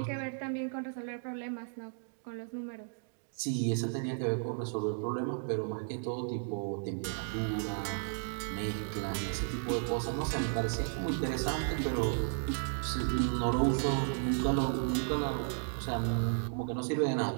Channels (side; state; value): left; silent; digital silence